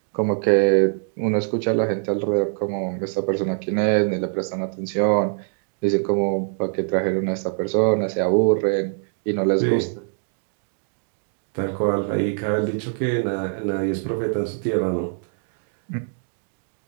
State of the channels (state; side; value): silent; left; digital silence